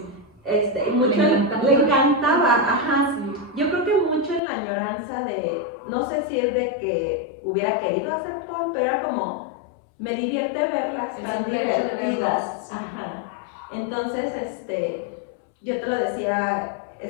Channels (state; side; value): drops out; right; at 4.4 s